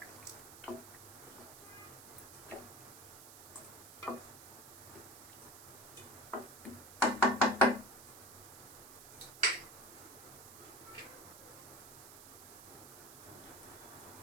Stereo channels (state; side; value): noise; right; hiss, 15 dB below the sound